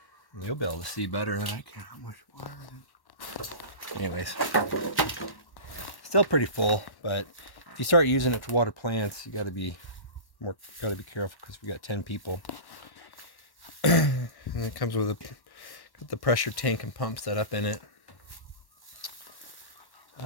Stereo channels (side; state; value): right; late; 1.1 ms